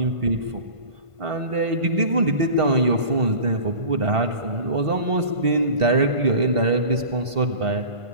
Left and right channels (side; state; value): left; late; 1.5 ms